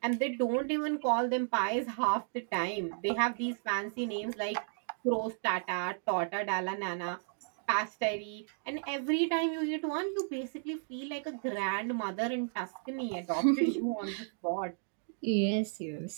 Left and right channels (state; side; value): silent; left; digital silence